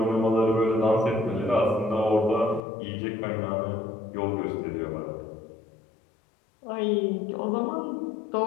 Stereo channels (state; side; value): drops out; right; at 2.6 s